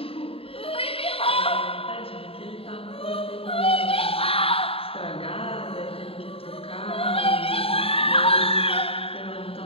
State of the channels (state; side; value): late; right; 0.27 ms